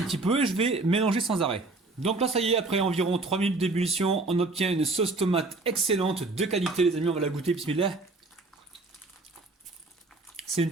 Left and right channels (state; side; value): quieter; left; 3.3 dB